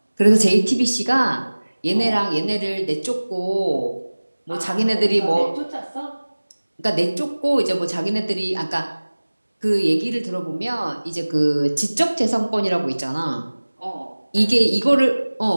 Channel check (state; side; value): inverted; both; correlation -1.00